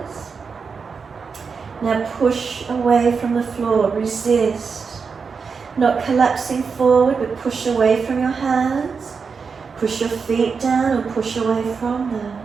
Now push away from the floor, resist. Not collapsing forward, but push away from your hands. Push your feet down and push away from them.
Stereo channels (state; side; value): quieter; left; 5.4 dB